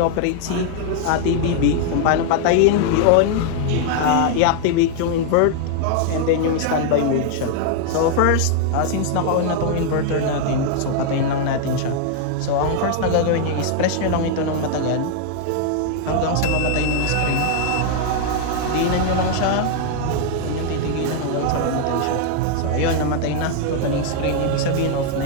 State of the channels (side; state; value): both; different; correlation 0.00